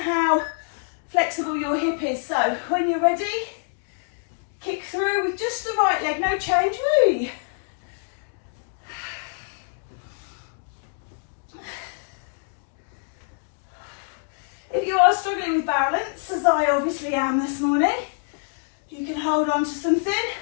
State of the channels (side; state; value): right; silent; digital silence